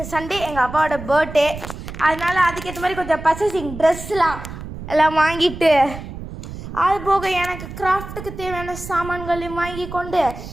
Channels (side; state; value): right; noise; rumble, 11 dB below the sound